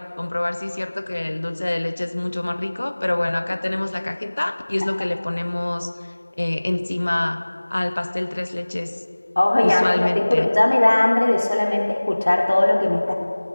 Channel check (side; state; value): both; inverted; correlation -1.00